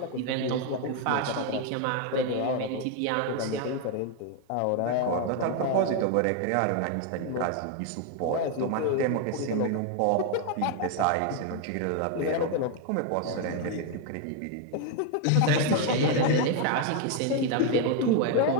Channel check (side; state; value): both; different; correlation 0.01